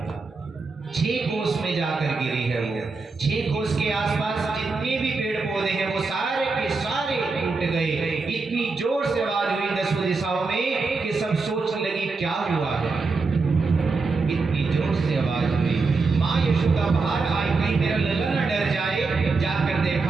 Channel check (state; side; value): quieter; left; 4.1 dB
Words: 6 कोस में जाकर गिरी है वो। 6 कोस के आसपास जितने भी पेड़ पौधे हैं वो सारे के सारे टूट गए। इतनी जोर से आवाज हुई 10 दिशाओं में कि सब सोचने लगी क्या हुआ है। इतनी जोर से आवाज हुई, माँ यशोदा बाहर आई, कहीं मेरा लला न डर जाए। जाकर